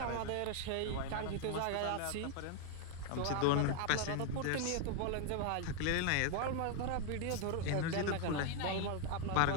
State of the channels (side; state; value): both; different; correlation 0.00